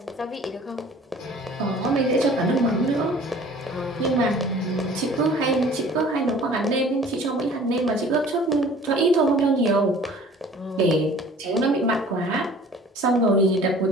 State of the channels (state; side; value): normal; both; correlation 0.49